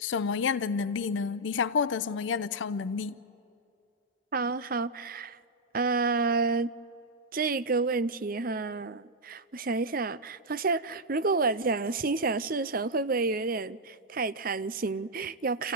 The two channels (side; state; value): both; normal; correlation -0.03